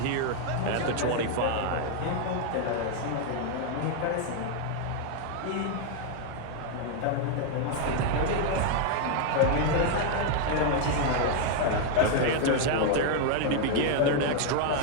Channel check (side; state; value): both; different; correlation 0.00